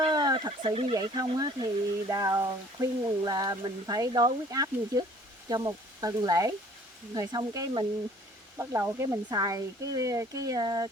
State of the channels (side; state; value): both; normal; correlation 0.54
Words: thật sự như vậy không á, thì Đào khuyên là mình phải đo huyết áp như trước cho một tuần lễ, rồi xong cái mình bắt đầu cái mình xài